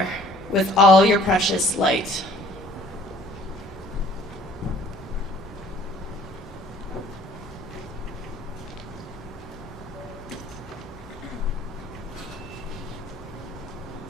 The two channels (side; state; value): both; normal; correlation 0.55